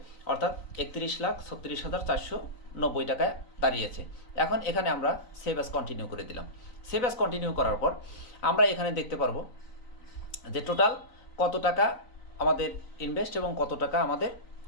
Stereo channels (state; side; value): late; right; 3.9 ms